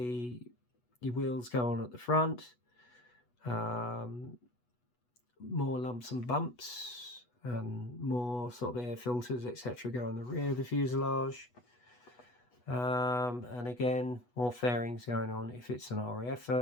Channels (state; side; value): late; right; 8.2 ms